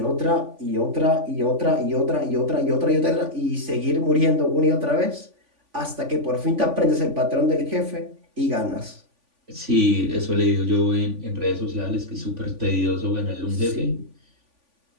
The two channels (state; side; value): late; left; 3.5 ms